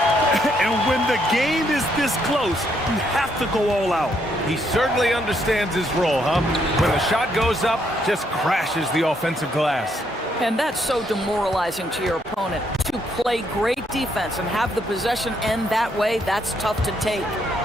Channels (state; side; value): normal; both; correlation 0.74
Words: And when the game is this close, you have to go all out. He certainly understands his role, huh? When the shot goes up, just crashes the offensive glass. And that's so demoralizing to your opponent. To play great defense and have the possession end that way, that's tough to take.